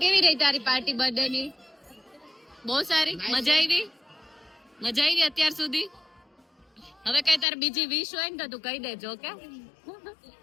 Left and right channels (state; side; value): drops out; right; at 7.5 s